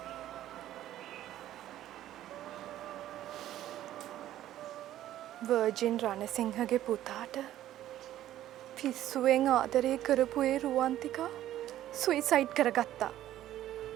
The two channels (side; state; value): left; quieter; 13.0 dB